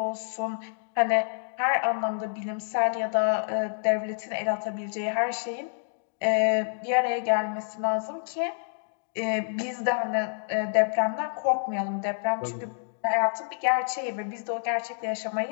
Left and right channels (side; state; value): right; silent; digital silence